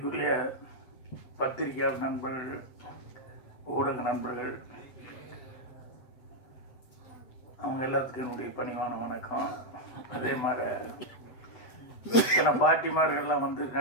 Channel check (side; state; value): right; late; 7.9 ms